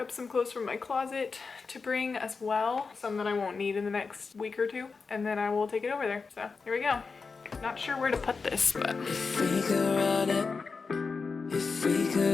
some clothes from my closet to bring as well, some that I won't need in the next week or 2, and then I will take it over there. So here we go. Not sure where to put this, but if we could run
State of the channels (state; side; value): quieter; right; 4.7 dB